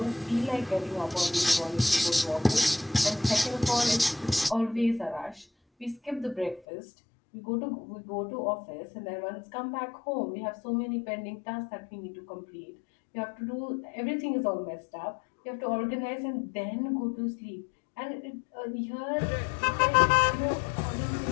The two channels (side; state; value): right; drops out; at 6.6 s